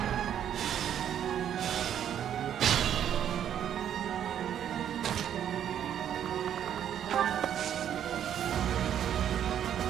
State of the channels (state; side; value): quieter; left; 9.8 dB